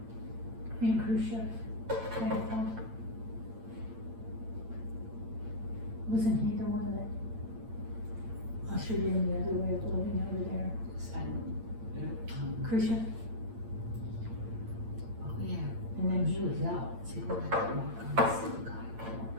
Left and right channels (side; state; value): left; late; 8.8 ms